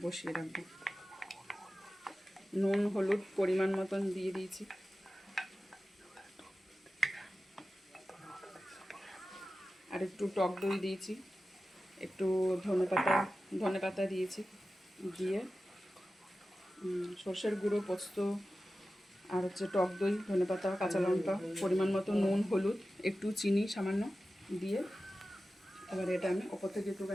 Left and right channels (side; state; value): both; normal; correlation 0.94